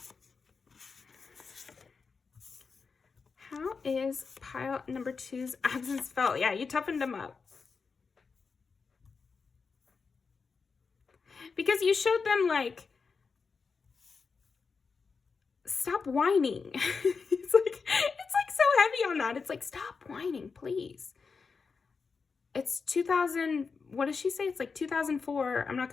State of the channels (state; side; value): quieter; right; 5.0 dB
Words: How is pile number 2's absence felt? Yeah, you toughened them up. because you showed them like, stop whining. It's like so heavy on that. It's like, stop whining, please. It's 2000, what does she say? It's like 2004. I'm not